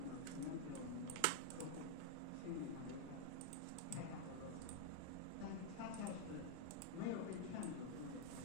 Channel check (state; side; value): different; both; correlation 0.00